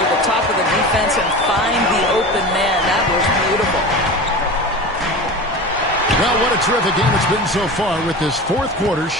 the top of the defense and find the open man. That was beautiful. Well, what a terrific game it's been so far, with this fourth quarter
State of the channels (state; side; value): normal; both; correlation 0.31